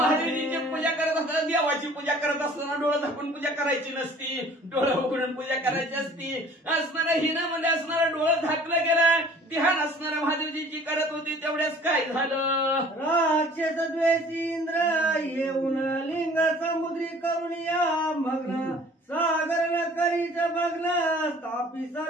पूजा करत असताना देवाची पूजा करत असताना डोळं झाकून पूजा करायची नसती, डोळं उघडून पूजा करायची असती. असणाऱ्या हिनामध्ये असणारं डोळं झाकलं गेलं. ध्यान असणाऱ्या महादेवजीची करत होती. तेवढ्याच काय झालं. राक्षस द्वेषी इंद्र येऊन लिंग समुद्री करून या मग्न सागर न करीच भग्न स्थापी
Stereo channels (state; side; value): normal; both; correlation 0.50